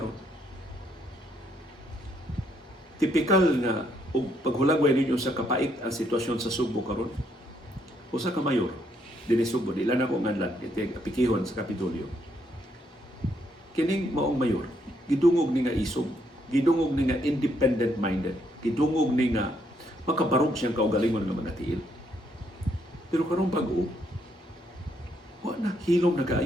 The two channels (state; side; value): normal; both; correlation 0.73